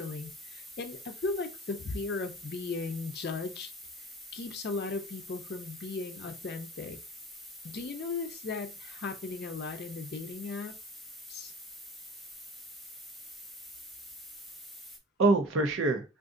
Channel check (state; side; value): normal; both; correlation 0.43